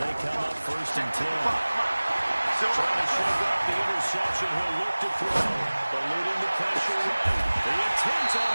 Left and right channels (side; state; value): both; inverted; correlation -1.00